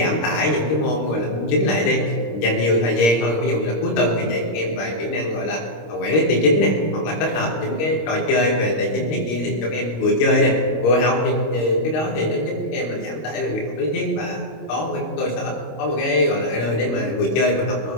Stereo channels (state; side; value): late; right; 26 ms